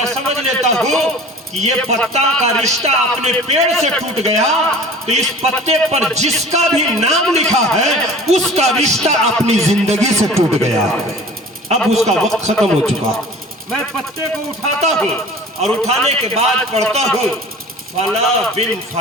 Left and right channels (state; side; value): normal; both; correlation 0.43